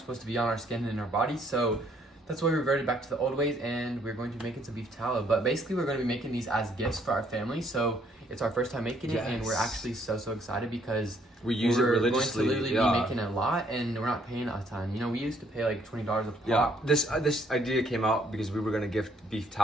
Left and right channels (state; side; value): normal; both; correlation 0.66